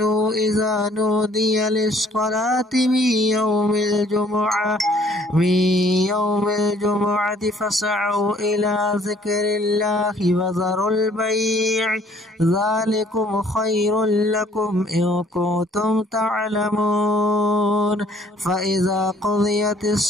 إذا نودي للصلاة من يوم الجمعة فاسعوا إلى ذكر الله وذروا البيع ذلكم خير لكم إن كنتم تعلمون. فإذا قضيت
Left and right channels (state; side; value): normal; both; correlation 0.60